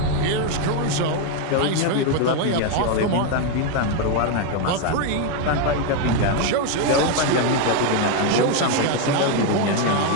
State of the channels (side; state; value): both; different; correlation 0.01